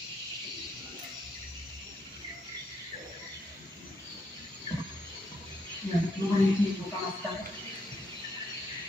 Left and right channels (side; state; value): both; normal; correlation 0.76